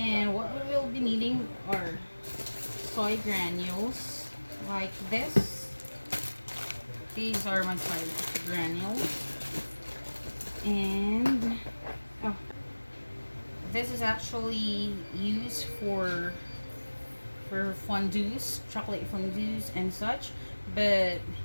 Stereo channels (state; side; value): inverted; both; correlation -1.00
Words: what we will be needing are soy granules like this. These are my soy granules, and oh, this is actually used for fondues, chocolate fondues and such, but